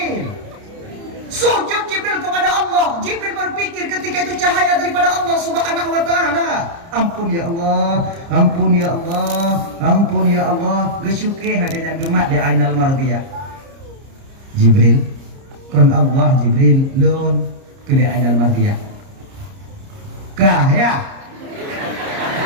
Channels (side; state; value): left; late; 30 ms